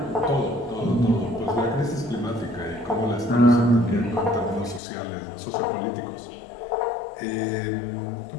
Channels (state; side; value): drops out; right; at 4.8 s